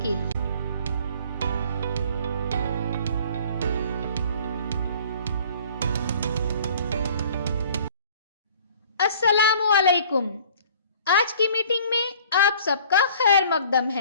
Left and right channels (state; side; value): inverted; both; correlation -0.51